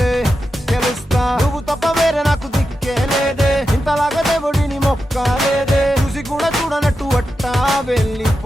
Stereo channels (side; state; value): both; normal; correlation 0.89